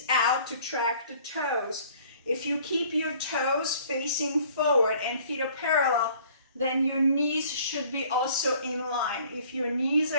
out to track the toes. If you keep your toes facing forward and feet are parallel, then your knees should be also in line. If your knees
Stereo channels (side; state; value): both; inverted; correlation -0.55